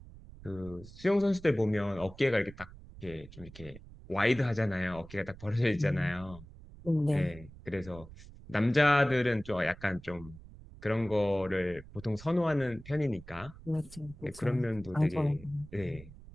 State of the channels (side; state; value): right; noise; rumble, 18 dB below the sound